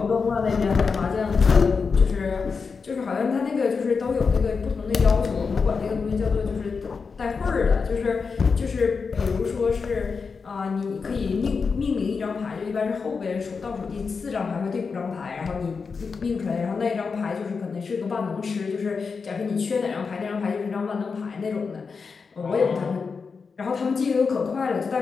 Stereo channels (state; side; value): quieter; right; 5.1 dB